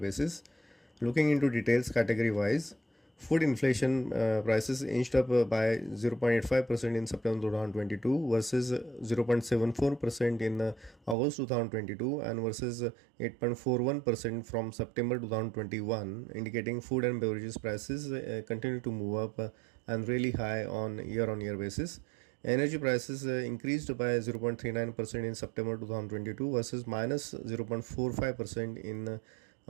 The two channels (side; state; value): left; drops out; at 11.2 s